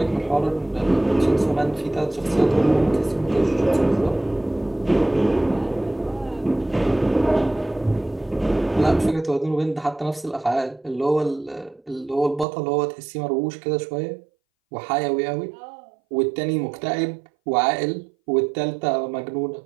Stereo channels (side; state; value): left; drops out; at 12.5 s